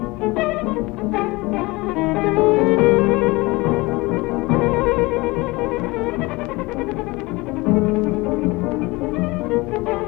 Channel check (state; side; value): quieter; right; 23.0 dB